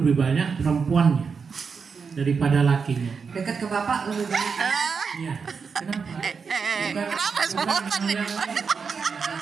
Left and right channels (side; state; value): left; quieter; 5.6 dB